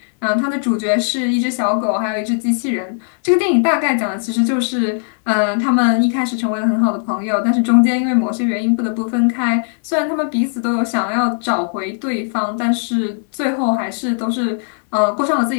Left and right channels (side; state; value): right; silent; 67 dB below the other